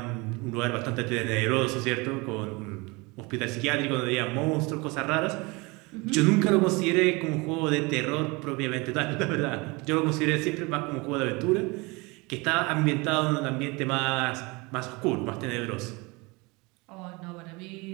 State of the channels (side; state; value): left; quieter; 26.0 dB